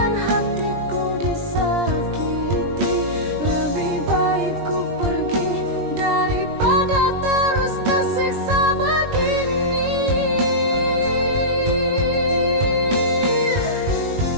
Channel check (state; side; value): late; left; 20 ms